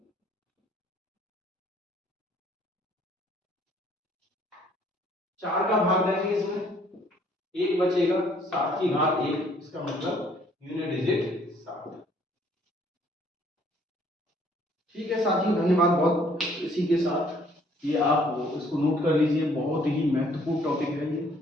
4 का भाग देंगे, इसमें 1 बचेगा, 7 की घात 1, इसका मतलब यूनिट डिजिट 7। ठीक है साथियों, धन्यवाद बहुत। इसी के साथ ये आप इसको नोट कर लीजिए, बहुत ही महत्वपूर्ण टॉपिक है ये।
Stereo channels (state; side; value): normal; both; correlation 0.62